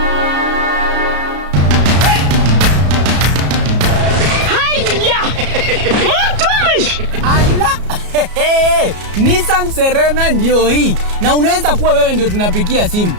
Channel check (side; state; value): left; late; 33 ms